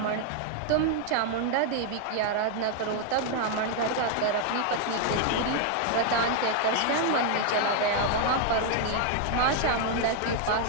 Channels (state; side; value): different; both; correlation 0.00